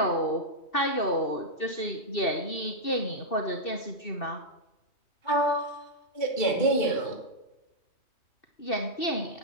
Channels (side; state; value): right; late; 2.7 ms